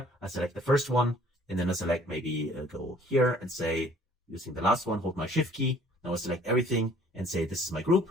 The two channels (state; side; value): normal; both; correlation 0.56